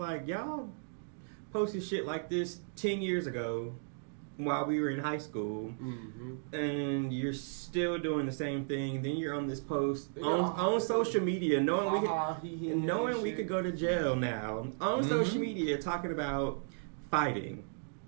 y'all posted shit like this 10 years ago while we were in high school, and you're still doing the same thing. Then you're on this post on social media, knowing we could go to jail now, on social media, talking about fighting.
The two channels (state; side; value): silent; left; digital silence